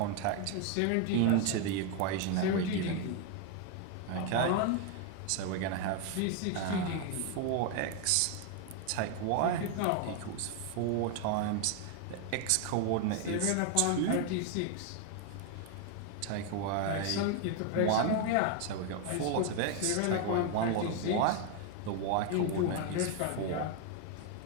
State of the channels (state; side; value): different; both; correlation 0.01